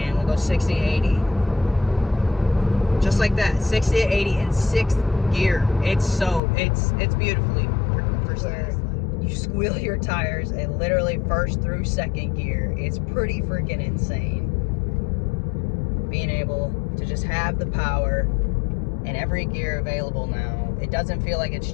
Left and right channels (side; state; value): right; drops out; at 6.4 s